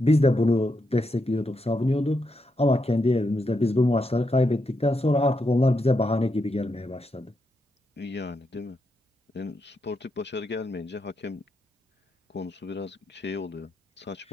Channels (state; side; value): normal; both; correlation 0.83